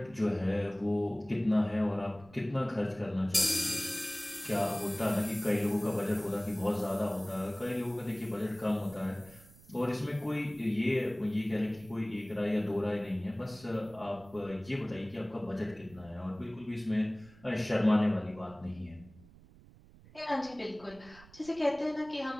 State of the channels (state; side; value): noise; right; rumble, 23 dB below the sound